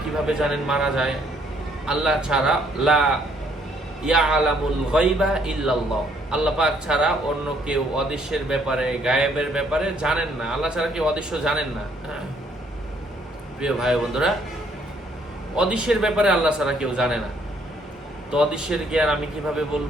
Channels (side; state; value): both; normal; correlation 0.66